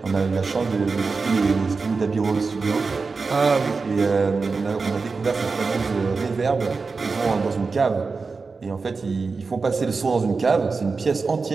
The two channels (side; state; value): left; quieter; 4.4 dB